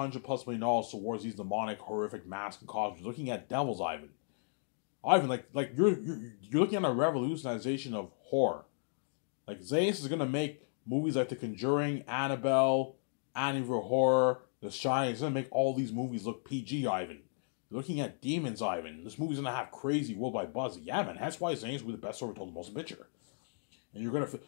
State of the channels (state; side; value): silent; right; digital silence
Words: million towards these demonic, horrific masks and costumes, looking at devils, Ivan. Ivan, like you're looking at a revolutionization of horror. Like, Zayas is gonna make movies like The Conjuring, Annabelle, Amityville Horror, The Shining. He's gonna make all these movies look PG, Ivan. You're looking at demons, Ivan. This movie's gonna have crazy worldwide buzz. Yeah, man. That's why Zayas will be the best story told in the motion picture. And you're gonna